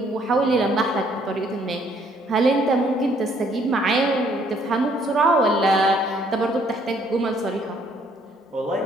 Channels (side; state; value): both; normal; correlation 0.65